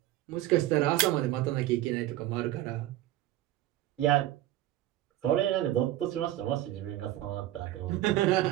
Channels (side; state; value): left; quieter; 14.4 dB